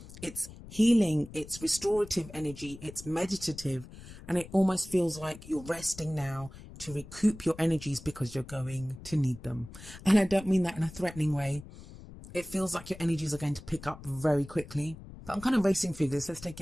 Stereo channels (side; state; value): left; noise; rumble, 16 dB below the sound